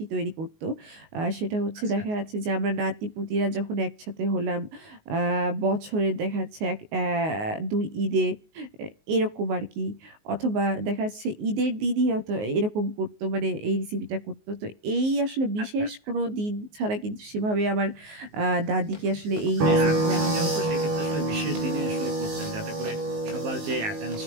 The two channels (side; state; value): left; late; 19 ms